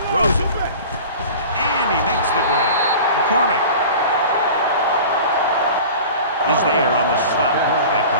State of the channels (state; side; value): inverted; both; correlation -0.38